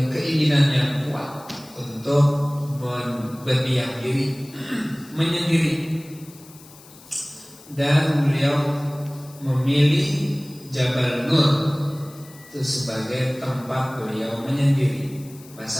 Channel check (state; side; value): noise; left; hiss, 22 dB below the sound